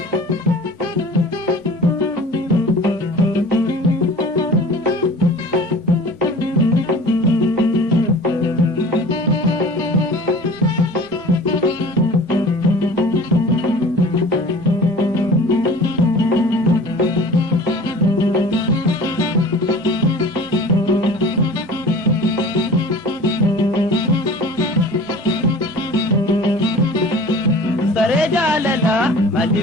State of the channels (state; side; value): normal; both; correlation 0.42